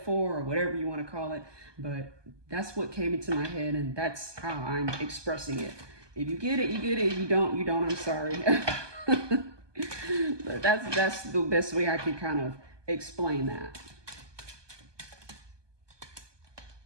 or whatever you want to call it, but that's what came into my head and that's how I'm expressing it. If you get it, you get it. If you don't, you don't. I'm sorry. But that's the best way I can kind of explain that.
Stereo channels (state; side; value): late; left; 1.2 ms